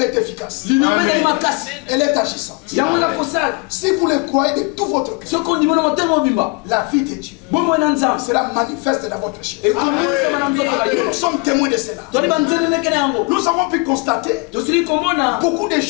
est efficace. Elle est agissante. Si vous le croyez de tout votre cœur, la vie de Dieu sera manifeste dans votre chair. Nous sommes témoins de cela. Nous avons pu constater beaucoup de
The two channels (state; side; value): quieter; right; 29.2 dB